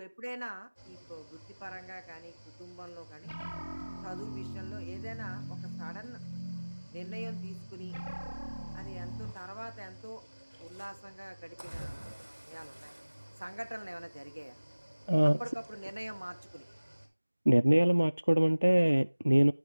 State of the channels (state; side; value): inverted; both; correlation -1.00